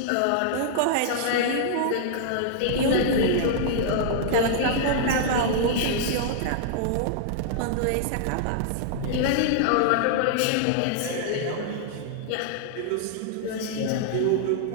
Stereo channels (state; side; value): different; both; correlation -0.01